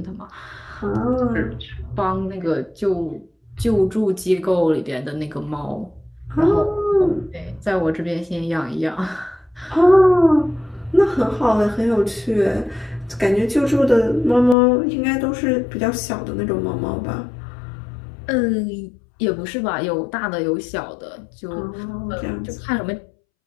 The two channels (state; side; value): drops out; right; at 14.6 s